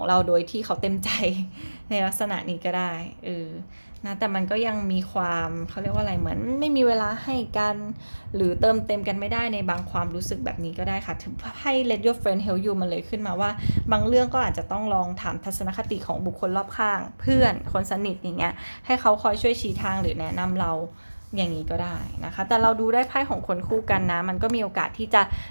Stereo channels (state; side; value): inverted; both; correlation -1.00